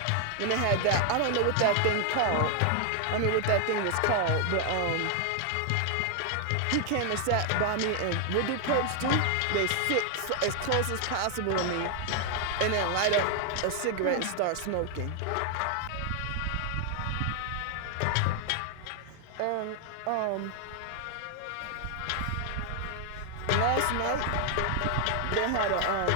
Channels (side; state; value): both; different; correlation 0.00